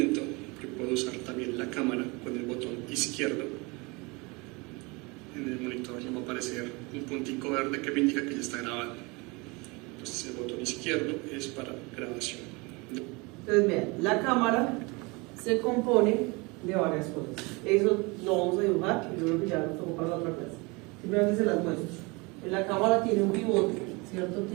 yo puedo usar también la cámara con el botón izquierdo. En el monitor ya va a aparecer un puntico verde que me indica que ya está grabando. Entonces el botón izquierdo es para grabación. Entonces, vean, la cámara se compone de varias cosas. Eso lo vamos a dibujar y yo creo que ya lo tocó para la otra clase. Simplemente se las muestro. En la cámara tiene un pivote, ¿cierto?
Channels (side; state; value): left; quieter; 26.9 dB